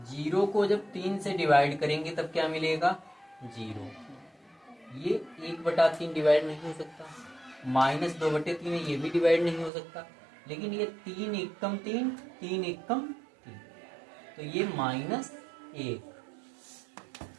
जीरो को जब 3 से डिवाइड करेंगे तब क्या मिलेगा? 0। ये 1/3 डिवाइड नहीं हो सकता, -2/3 है, ये भी डिवाइड नहीं हो सकता, लेकिन ये 3 एकम 3, 3 एकम 3, तो ये -1।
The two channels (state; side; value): drops out; left; at 9.7 s